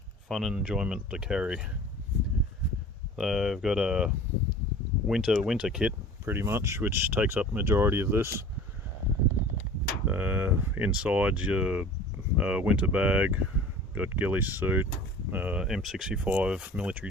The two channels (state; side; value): normal; both; correlation 0.42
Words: fun and enjoyment to carry. So I've got a winter kit pretty much, which takes up majority of this. Inside your winter bag, got ghillie suit, M65